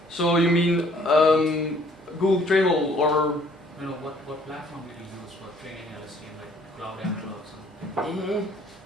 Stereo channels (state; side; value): normal; both; correlation 0.60